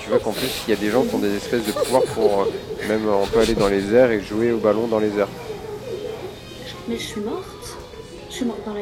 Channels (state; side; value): identical; both; correlation 1.00